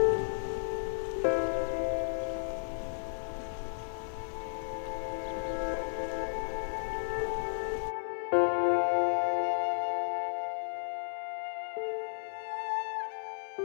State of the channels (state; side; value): silent; right; 55 dB below the other